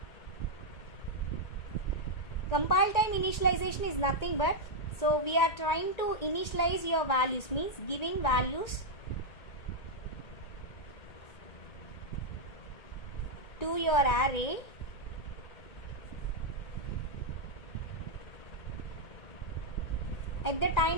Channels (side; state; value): right; late; 2.2 ms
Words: Compile time initialization is nothing but, so we are trying to initialize your values, means giving values to your array at the